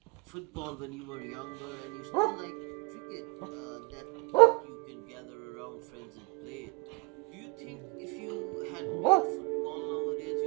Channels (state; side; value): quieter; left; 29.2 dB